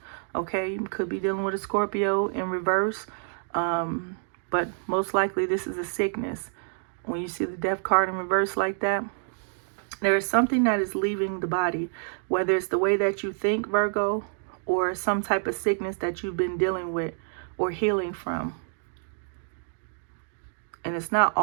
okay? You could be dealing with a Scorpio in reverse. But most likely this is a sickness. When you see the death card in reverse like that, there is something that is leaving the body, whether it's the way that you think, Virgo, or some type of sickness that you've been dealing with or healing from. And it's not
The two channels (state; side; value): silent; left; digital silence